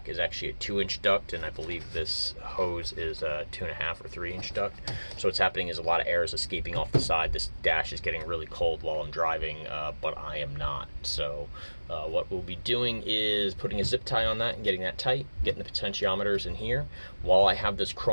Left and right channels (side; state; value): both; inverted; correlation -1.00